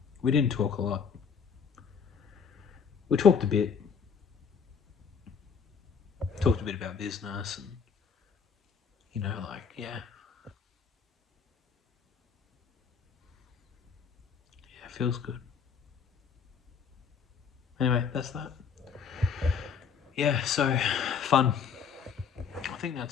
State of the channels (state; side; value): quieter; right; 6.5 dB